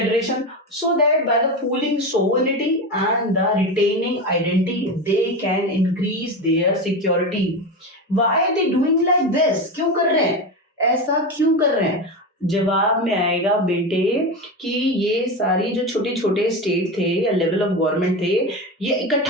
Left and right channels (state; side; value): normal; both; correlation 0.20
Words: so that by the pooling sovereignty and the retaining identity they can increase their security. Why are they doing like this? क्यों कर रहे हैं ऐसा, क्यों कर रहे हैं? जवाब में आएगा बेटे कि ये सारी जो छोटे छोटे स्टेट थे या लेवल ऑफ गवर्नमेंट थे, ये